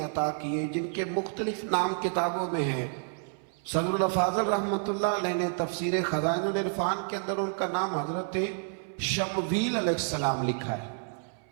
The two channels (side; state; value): left; silent; 58 dB below the other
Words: عطا کیے جن کے مختلف نام کتابوں میں ہیں۔ صدر الافاضل رحمۃ اللہ علیہ نے تفسیر خزائن العرفان کے اندر ان کا نام حضرت شمویل علیہ السلام لکھا ہے۔